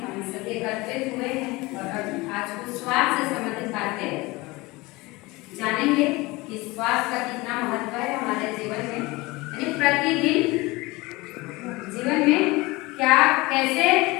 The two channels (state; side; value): quieter; right; 22.5 dB